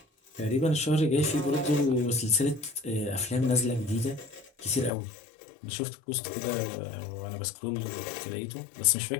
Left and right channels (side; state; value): right; drops out; at 4.9 s